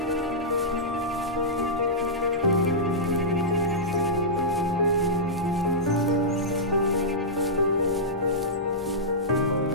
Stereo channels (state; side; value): normal; both; correlation -0.14